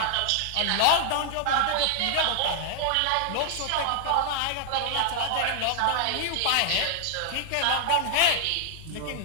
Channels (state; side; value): different; both; correlation 0.00